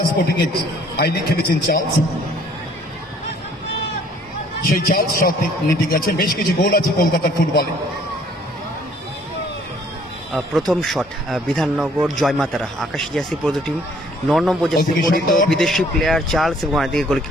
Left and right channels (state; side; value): normal; both; correlation 0.59